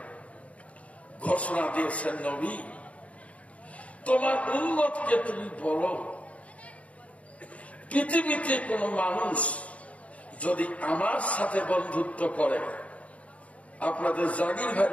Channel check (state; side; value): late; right; 0.066 ms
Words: ঘোষণা দিয়েছেন, নবী তোমার উম্মতকে তুমি বলো, পৃথিবীতে কোন মানুষ যদি আমার সাথে বন্ধুত্ব করে, আপনাদের জাগির